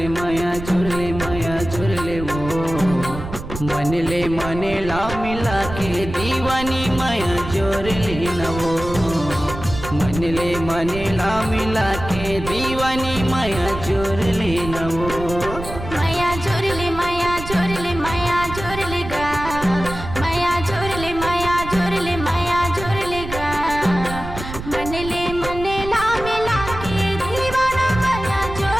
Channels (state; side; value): noise; right; rumble, 9 dB below the sound